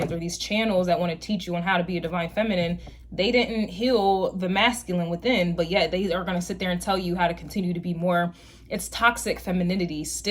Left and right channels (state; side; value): identical; both; correlation 1.00